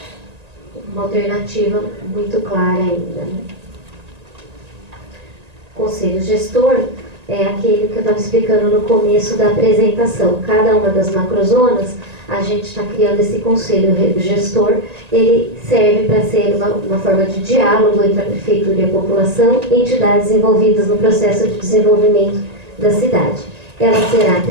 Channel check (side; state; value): left; late; 1.9 ms